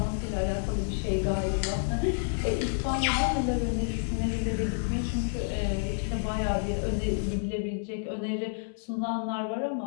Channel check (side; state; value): right; silent; digital silence